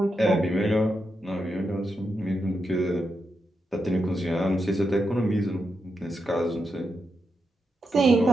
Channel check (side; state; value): both; normal; correlation 0.85